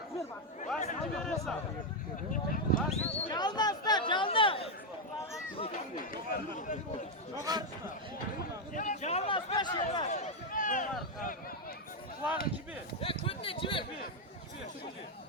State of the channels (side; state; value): both; normal; correlation 0.03